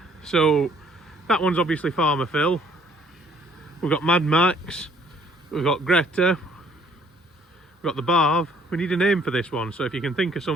So that one's obviously Farmer Phil. We've got Mad Max, we've got Greta, we've got the Barv. We need a name for this one, so if you can think of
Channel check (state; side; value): normal; both; correlation 0.60